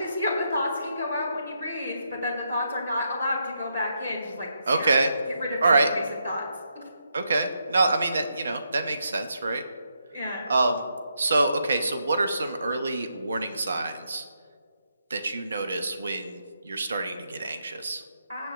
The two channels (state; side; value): inverted; both; correlation -0.80